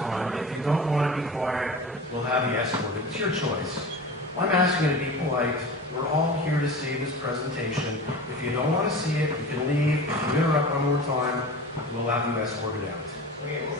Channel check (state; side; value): normal; both; correlation 0.34